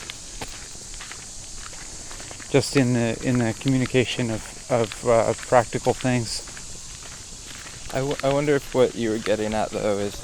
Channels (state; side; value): identical; both; correlation 1.00